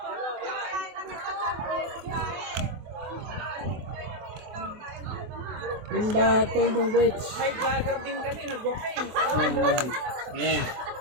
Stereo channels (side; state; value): left; late; 24 ms